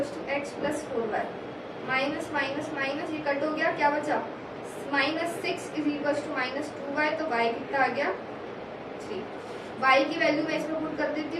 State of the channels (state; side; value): identical; both; correlation 1.00